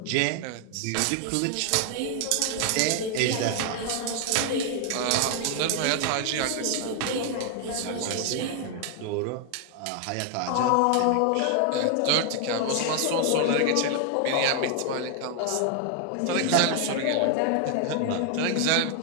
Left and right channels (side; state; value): both; different; correlation 0.00